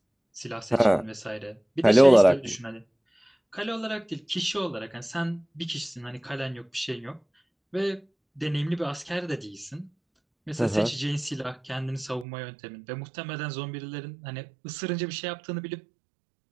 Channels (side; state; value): left; drops out; at 12.2 s